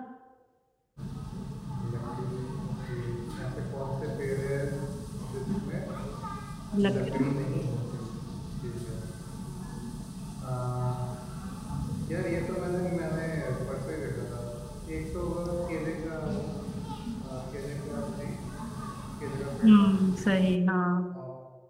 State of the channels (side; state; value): both; identical; correlation 1.00